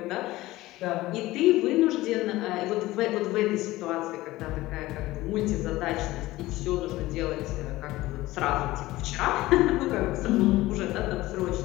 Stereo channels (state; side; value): quieter; right; 17.8 dB